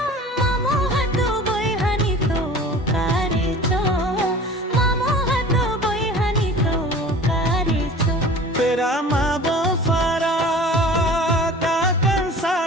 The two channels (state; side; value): normal; both; correlation 0.42